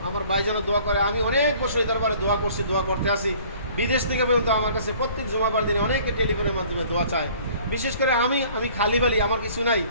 আমার ভাই যেন দোয়া করে। আমি অনেক বছর এই দরবারে দোয়া করছি, দোয়া করতে আসি। বিদেশ থেকে পর্যন্ত আমার কাছে প্রত্যেক জুমাবার দিনে অনেকে টেলিফোনের মাধ্যমে দোয়া চায়। বিশেষ করে আমি খালি বালি, আমার কিছু নাই,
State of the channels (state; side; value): inverted; both; correlation -0.53